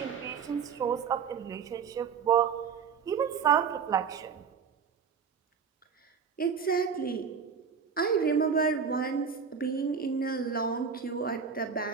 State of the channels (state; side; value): quieter; left; 6.4 dB